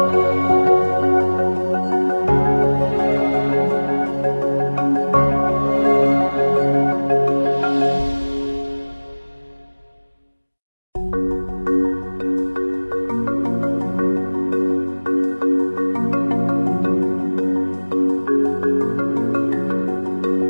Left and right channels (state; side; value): inverted; both; correlation -1.00